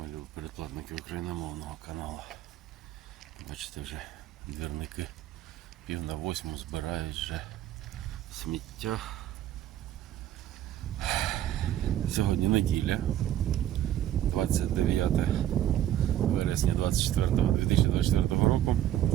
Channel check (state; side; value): quieter; left; 12.1 dB